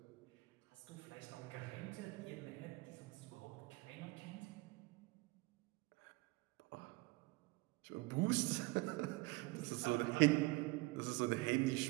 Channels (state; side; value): quieter; left; 23.2 dB